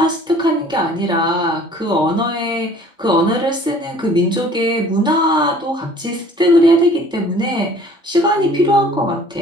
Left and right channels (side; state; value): both; normal; correlation 0.52